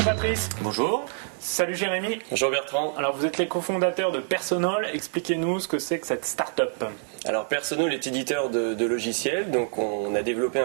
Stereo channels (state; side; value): silent; left; digital silence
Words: Bonjour. Salut Jérémy. Bonjour Bertrand. Alors vous êtes les cofondateurs de Personol. Expliquez-nous ce que c'est que cette start-up. Alors Personol est éditeur de logiciels, donc on a développé